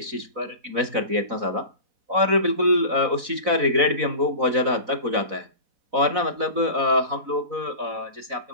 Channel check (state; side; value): late; left; 4.0 ms